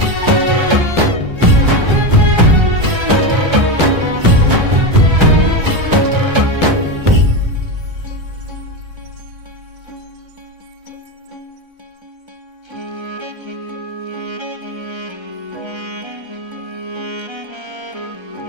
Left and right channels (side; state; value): left; late; 1.3 ms